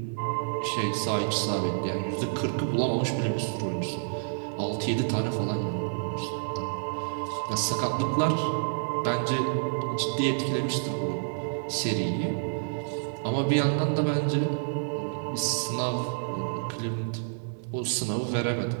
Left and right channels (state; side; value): silent; left; digital silence